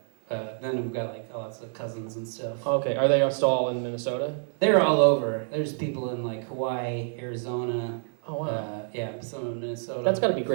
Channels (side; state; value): left; silent; 60 dB below the other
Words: Then we've got like lots of cousins and stuff. Okay, are they still all in Minnesota? They're all over. There's people in like Hawaii, Arizona. Oh wow. Yeah, some in Minnesota. That's got to be